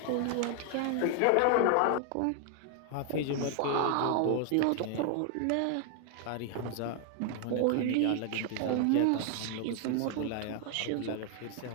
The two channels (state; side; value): different; both; correlation 0.00